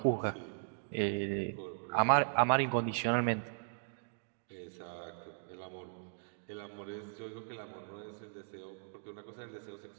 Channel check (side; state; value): left; silent; digital silence